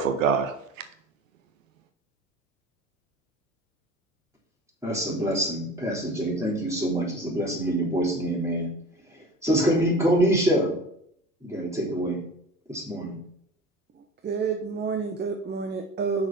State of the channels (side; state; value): both; normal; correlation 0.37